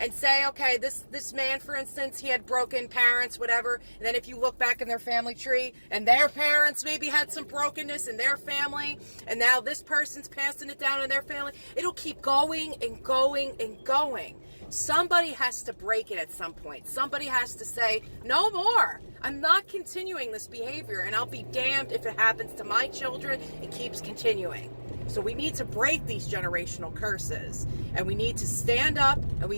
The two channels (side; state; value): both; inverted; correlation -1.00